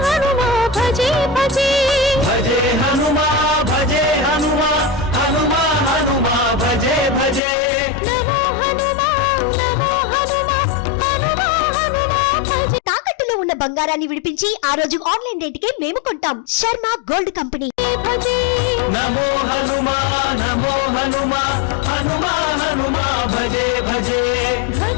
हनुमान भजे भजे भजे हनुमान भजे हनुमान हनुमान हनुमान भजे भजे नमो हनुमान हनुमान हनुमान भजे తాకట్టులో ఉన్న బంగారాన్ని విడిపించి ఆ రోజు ఆన్లైన్ రేటుకే మేము కొంటాం. Sharma gold company. భజే నమో హనుమాన్ నమో హనుమాన్ హనుమాన్ హనుమాన్ భజే భజే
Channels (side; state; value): right; drops out; at 7.4 s